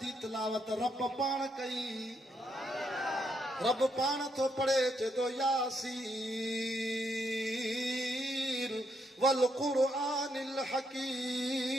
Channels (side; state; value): both; normal; correlation 0.77